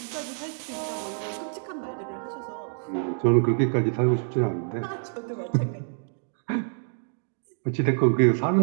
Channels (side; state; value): left; silent; digital silence